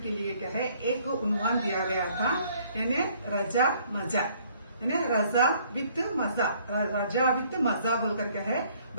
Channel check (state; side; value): inverted; both; correlation -0.61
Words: के लिए क्या है एक उन्वान दिया गया था, यानी रजा मजा, यानी रजा विद मजा, रजा विद मजा बोलकर क्या है